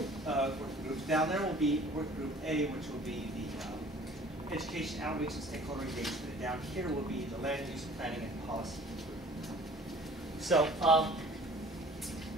working groups. Down there will be working group A, which will be the education, outreach, and stakeholder engagement. And down here will be the land use planning and policy group. So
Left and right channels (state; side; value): normal; both; correlation 0.50